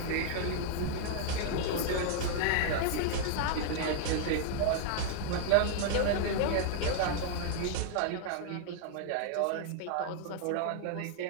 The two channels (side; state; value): both; different; correlation 0.00